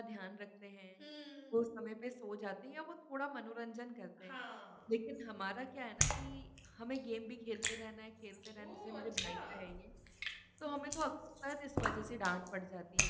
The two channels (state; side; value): identical; both; correlation 1.00